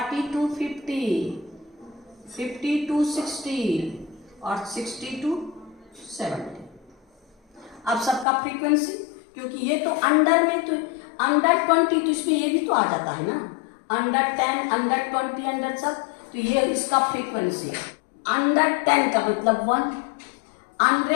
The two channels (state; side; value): drops out; right; at 8.2 s